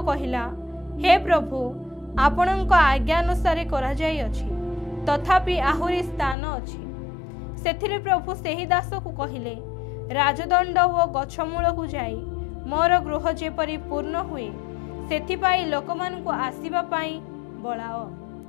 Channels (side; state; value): right; drops out; at 6.4 s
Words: कहिला, हे प्रभु आपणक आज्ञा अनुसार करा जाई अछि, तथापि आहुरी स्थान अछि। सेथिरे प्रभु सेही दास को कहिले, राजदंड व गछमूल को जाई मोर गृह जेपरि पूर्ण हुए सेथिपाई लोकमानंकु आसीबा पाई बळाओ।